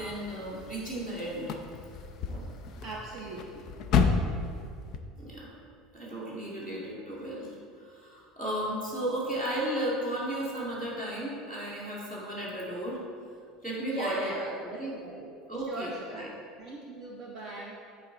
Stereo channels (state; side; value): normal; both; correlation 0.37